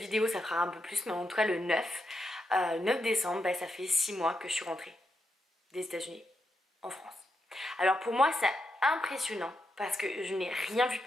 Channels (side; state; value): both; normal; correlation 0.84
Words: ça fera un peu plus, mais en tout cas le 9 décembre, bah, ça fait 6 mois que je suis rentrée des États-Unis en France. Alors pour moi c'est impressionnant parce que je n'ai rien vu